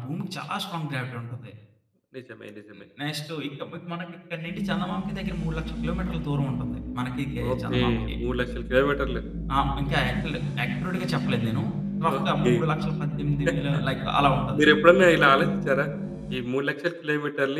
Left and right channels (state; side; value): identical; both; correlation 1.00